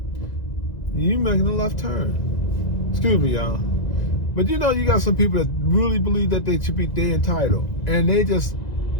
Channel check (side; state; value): right; late; 1.9 ms